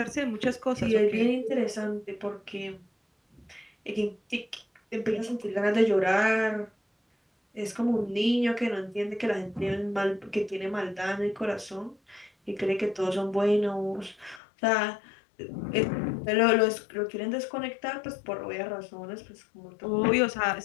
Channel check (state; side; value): drops out; right; at 14.4 s